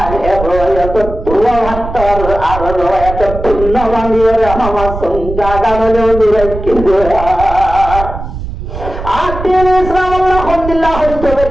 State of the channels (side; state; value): right; noise; rumble, 8 dB below the sound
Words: এত দুয়া হাত্তর আর এত পুণ্য মানিয়ে আমার সঙ্গা গানলেও দূরে কিন্তু আতির ইসলাম আল্লাহ আলহামদুলিল্লাহ হস্তবের